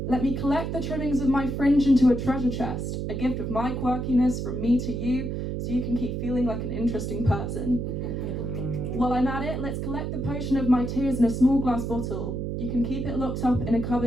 Let me collect the trimmings of my fringe into a treasure chest, a gift of my quirkiness from me to you, so you can keep feeling like an interesting person. While I'm at it, let's collect the potion of my tears in a small glass bottle. You can keep it locked up in a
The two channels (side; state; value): right; noise; hum, 3 dB below the sound